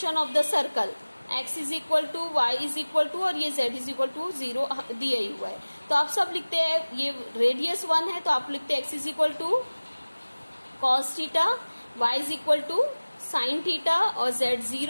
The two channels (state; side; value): inverted; both; correlation -1.00